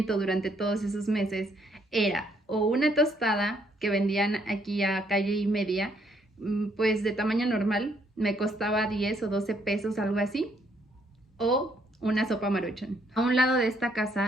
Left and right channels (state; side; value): normal; both; correlation 0.70